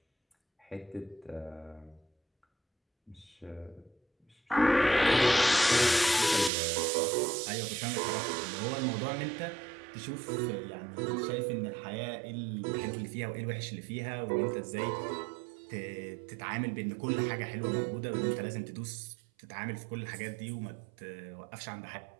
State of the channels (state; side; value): drops out; left; at 6.5 s